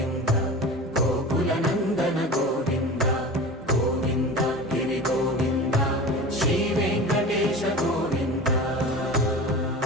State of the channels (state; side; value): normal; both; correlation 0.34